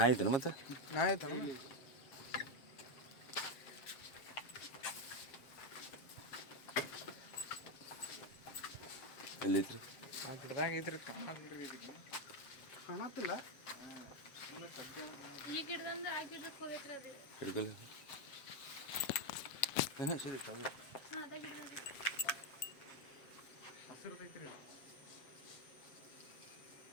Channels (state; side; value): late; right; 7.6 ms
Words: ಐತೇನು ಮತ್ತೆ ನಾ ಆಯ್ತಾನ ಎಲ್ಲೈತ್ರಿ ಆ ಗಿಡದಾಗ ಐತ್ರಿ ಕಾಣತ್ತಿಲ್ಲ. ಈ ಗಿಡದಿಂದ ಆ ಗಿಡಕ್ಕೆ ಹೋಗೈತ್ರಿ ಅದು. ಹಿಡ್ಕಲ್ಲ ಹಾಂ ಸರಿ ಹಾಂ ಅದ ಗಿಡದಿಂದ ಹಸಿರುದೈತ್ರಿ.